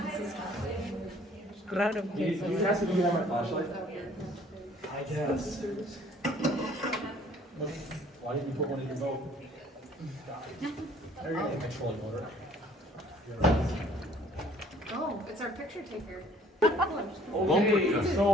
Crowd of You people. guys can have my flashlight? I guess. Why didn't you put one in your boat? There you go, controlling motor. Oh, it's our picture taker. Okay,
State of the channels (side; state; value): both; normal; correlation 0.56